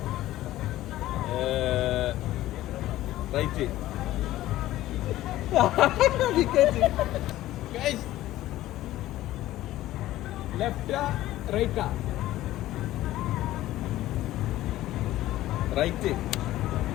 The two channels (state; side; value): quieter; right; 15.1 dB